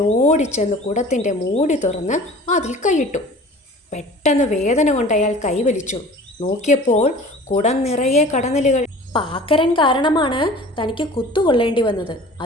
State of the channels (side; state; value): both; normal; correlation 0.43